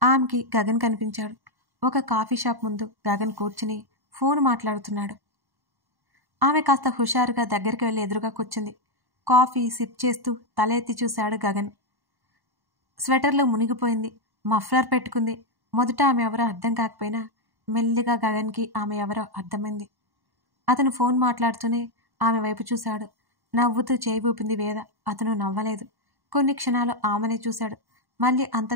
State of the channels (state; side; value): late; left; 1.1 ms